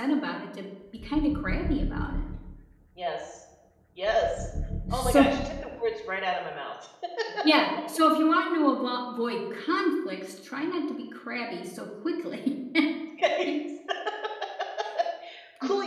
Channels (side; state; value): both; identical; correlation 1.00